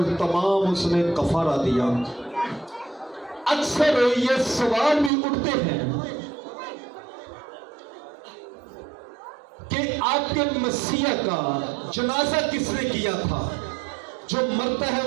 تمام اس نے کفارہ دیا۔ اکثر یہ سوال بھی اٹھتے ہیں کہ آپ کے مسیح کا جنازہ کس نے کیا تھا؟ جو مرتا ہے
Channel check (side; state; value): left; drops out; at 5.1 s